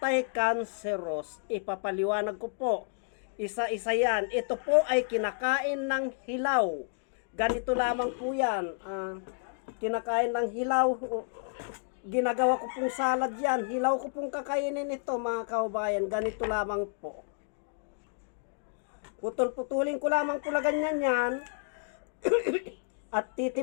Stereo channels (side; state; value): right; silent; digital silence